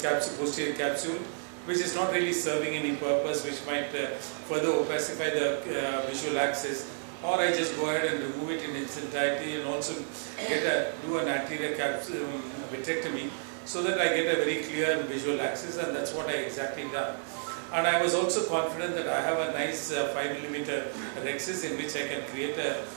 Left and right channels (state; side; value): silent; left; 55 dB below the other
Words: capsule, posterior capsule, which is not really serving any purpose, which might further opacify the visual axis, or I just go ahead and remove it in its entirety and also do an anterior capsule vitrectomy so that I get a very clear visual axis, and that's what I exactly done. And I was also confident that I have a nice 5mm rhexis in which I can create an